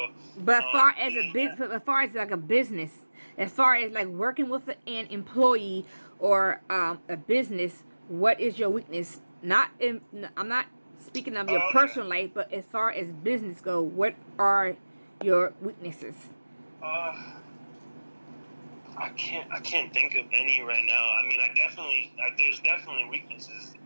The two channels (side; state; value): both; inverted; correlation -1.00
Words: but as far as as far as like a business, as far as like working with an employee or a business, what is your weakness? I'm not speaking of your personal life, but as far as business go, what are your weaknesses? I can't think of any right now. I mean, there's definitely weaknesses.